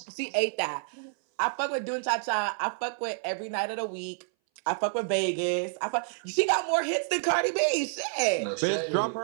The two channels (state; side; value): silent; left; 59 dB below the other